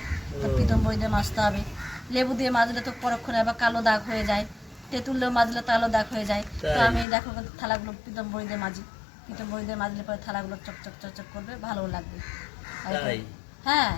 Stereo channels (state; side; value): drops out; right; at 7.1 s